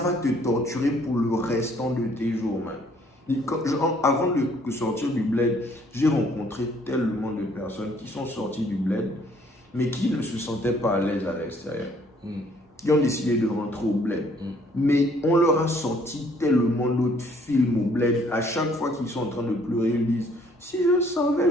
te torturer pour le restant de tes jours, man. Avant de sortir du bled, j'ai rencontré tellement de personnes qui sont sorties du bled, mais qui ne se sentaient pas à l'aise à l'extérieur. Qui ont décidé de rentrer au bled. Mais on leur a sorti tellement d'autres films au bled. À chaque fois qu'ils sont en train de pleurer, ils disent « Si je savais,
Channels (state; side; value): normal; both; correlation 0.62